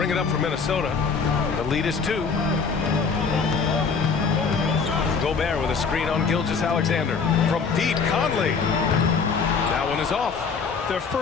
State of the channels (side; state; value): right; quieter; 5.3 dB